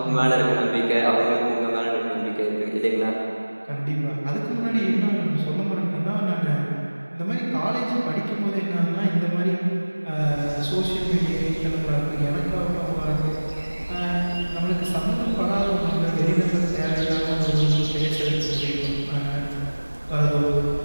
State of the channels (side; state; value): both; inverted; correlation -1.00